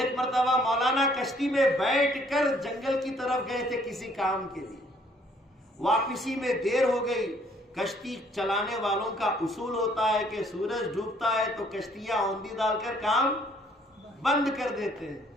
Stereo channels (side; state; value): both; normal; correlation 0.62